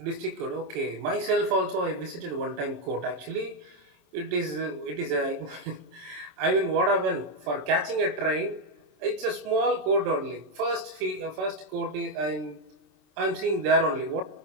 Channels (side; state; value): left; late; 27 ms